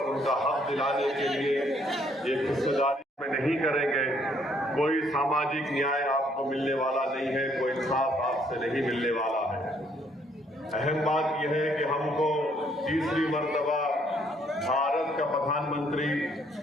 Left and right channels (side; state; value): both; normal; correlation 0.67